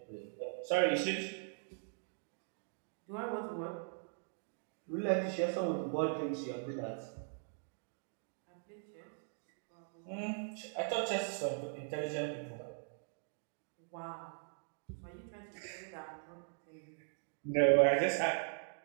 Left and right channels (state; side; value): silent; left; digital silence